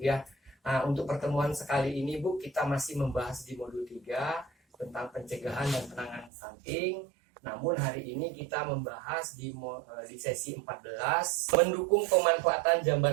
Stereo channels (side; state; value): left; drops out; at 6.3 s